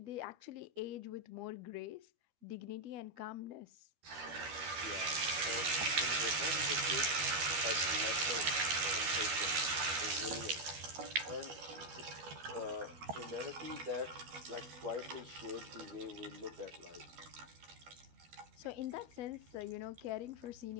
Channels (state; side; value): late; left; 12 ms